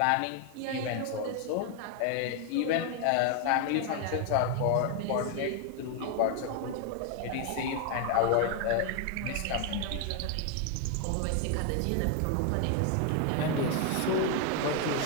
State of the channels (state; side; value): different; both; correlation 0.01